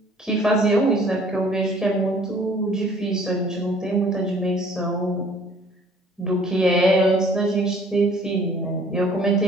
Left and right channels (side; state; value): both; normal; correlation 0.55